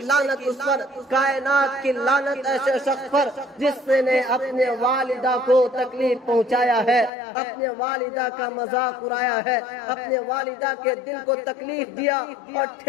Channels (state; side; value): drops out; right; at 7.1 s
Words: لعنت اس پر، کائنات کی لعنت ایسے شخص پر جس نے اپنے والدہ کو تکلیف پہنچایا ہے، اپنے والدہ کا مذاق اڑایا ہے، اپنے والدہ کے دل کو تکلیف دیا اور